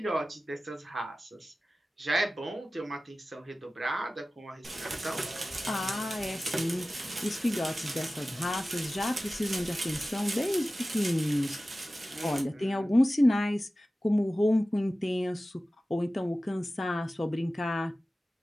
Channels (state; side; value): normal; both; correlation 0.96